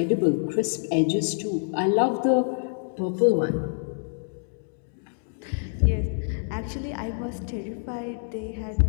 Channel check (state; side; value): silent; right; digital silence